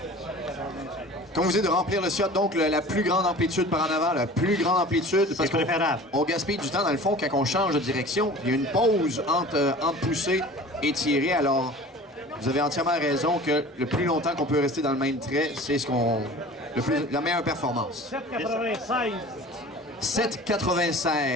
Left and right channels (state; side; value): normal; both; correlation 0.42